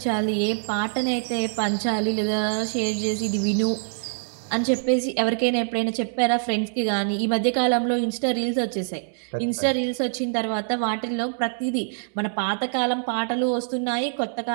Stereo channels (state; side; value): silent; left; digital silence